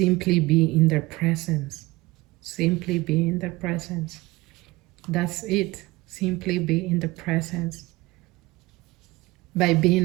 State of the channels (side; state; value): left; quieter; 20.6 dB